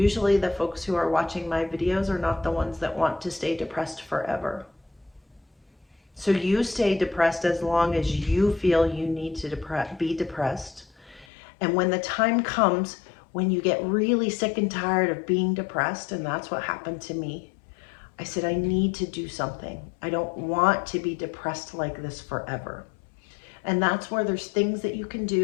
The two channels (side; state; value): right; drops out; at 11.2 s